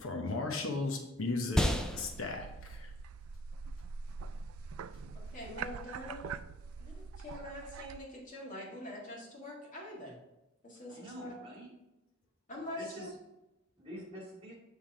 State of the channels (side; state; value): both; normal; correlation 0.58